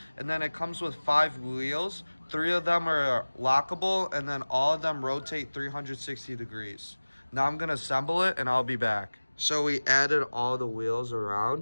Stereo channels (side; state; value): both; inverted; correlation -1.00